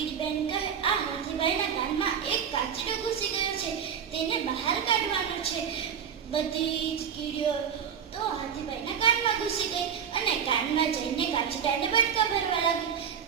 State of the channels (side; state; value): left; quieter; 7.8 dB